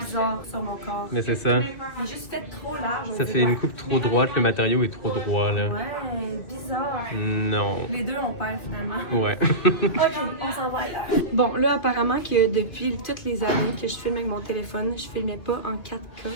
sur mon corps. Mais c'est ça. Il est juste fait trop large. Ça fait une coupe trop droite, le matériau est trop droit, là. Ouais, bizarre. Non. Les deux, on perd finalement. Ouais. Ok, on s'en va là. Bon, là, apparemment que depuis toutes les années que je filme avec mon téléphone, je filmais pas en 4K.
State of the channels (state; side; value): late; right; 2.9 ms